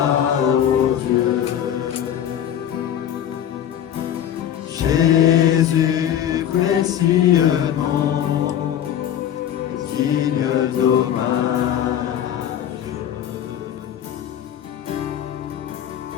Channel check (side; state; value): right; quieter; 10.2 dB